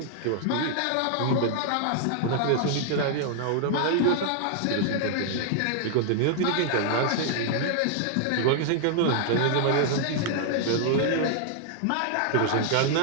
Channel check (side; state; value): both; different; correlation -0.01